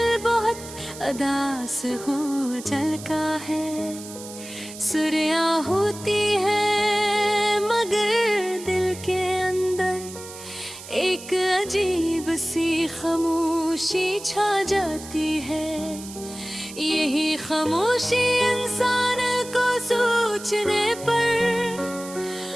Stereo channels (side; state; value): right; noise; hiss, 14 dB below the sound